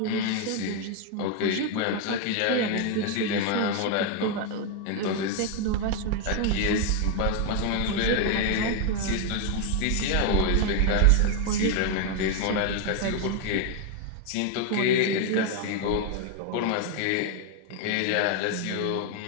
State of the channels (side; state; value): both; different; correlation 0.01